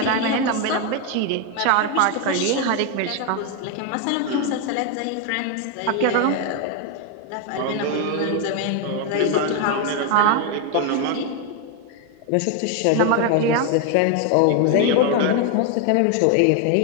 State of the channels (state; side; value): different; both; correlation 0.01